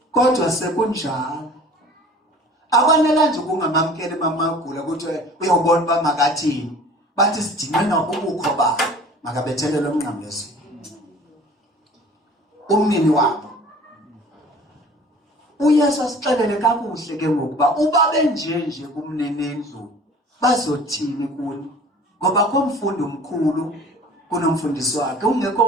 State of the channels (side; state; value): both; normal; correlation 0.46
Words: kodwa sekunjalo akwanela nje kungamamkeli mamagula ukuthi uyobona uba makathini bathi sidinwe nobukho ba makabethelele umnqamlezo umnini wabo uYesu asixelele kakuhle ke ngokuba uba benjenje kumnenendlu bazothini kuni ngoba komfundi omkhulu kunomfundisi wakhe